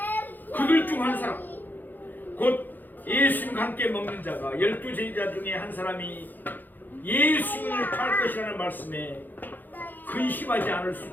그들 중 한 사람, 곧 예수님과 함께 먹는 자가 12제자 중에 한 사람이 예수님을 팔 것이라는 말씀에 근심하지 않을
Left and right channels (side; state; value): right; late; 0.087 ms